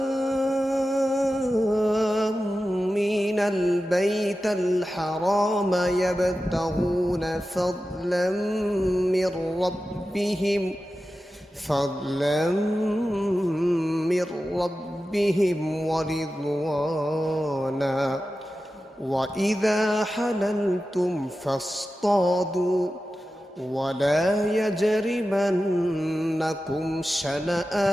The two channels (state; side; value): normal; both; correlation 0.93